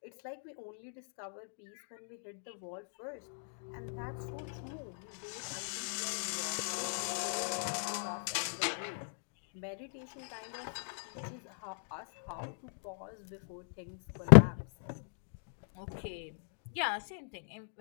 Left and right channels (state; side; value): silent; right; digital silence